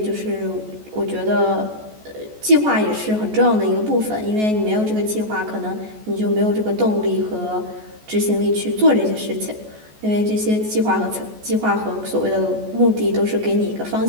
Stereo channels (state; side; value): late; left; 14 ms